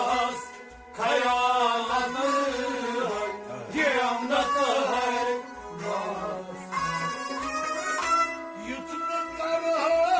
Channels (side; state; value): both; identical; correlation 1.00